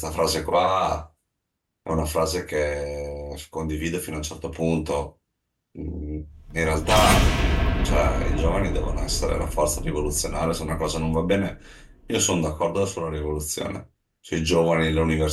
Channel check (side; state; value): both; identical; correlation 1.00